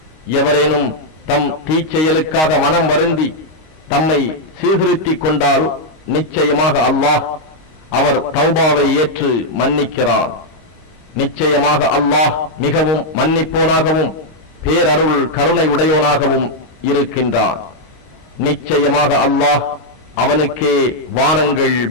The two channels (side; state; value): right; late; 26 ms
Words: எவரேனும் தம் தீச்செயலுக்காக மனம் வருந்தி தம்மை சீர்திருத்திக் கொண்டால் நிச்சயமாக அல்லாஹ் அவர் தௌபாவை ஏற்று மன்னிக்கிறான். நிச்சயமாக அல்லாஹ் மிகவும் மன்னிப்போனாகவும் பேரருள் கருணை உடையோனாகவும் இருக்கின்றான். நிச்சயமாக அல்லாஹ் அவனுக்கே வானங்கள்